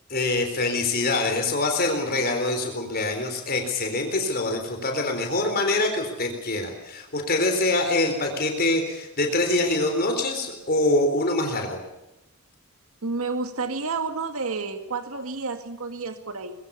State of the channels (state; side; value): normal; both; correlation 0.04